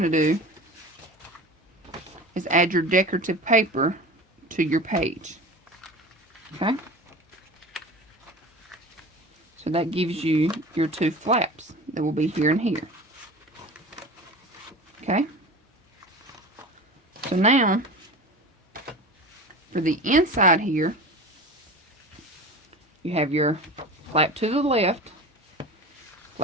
to do is add your decorative paper to your page. Okay, so that gives you your 2 flaps that will be here and here. Okay, So now, for the inside here, you have your flap to the left,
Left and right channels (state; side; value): normal; both; correlation 0.34